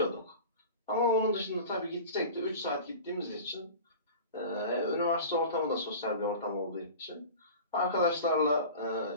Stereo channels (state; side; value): inverted; both; correlation -0.36